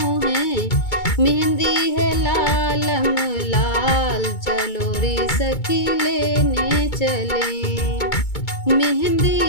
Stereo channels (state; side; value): late; right; 2.2 ms